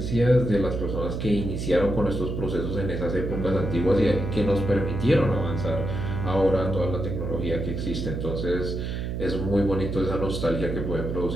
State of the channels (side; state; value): right; noise; hum, 3 dB below the sound